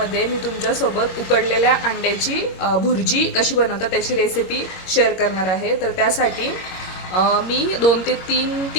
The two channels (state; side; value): late; right; 21 ms